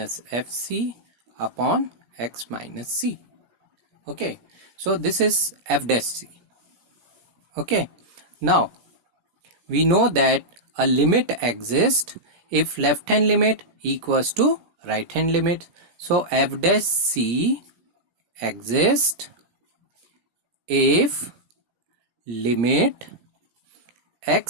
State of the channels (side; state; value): left; late; 17 ms